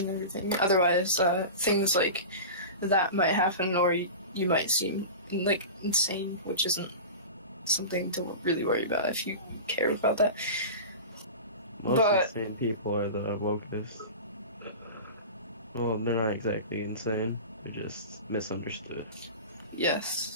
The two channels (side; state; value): both; inverted; correlation -0.31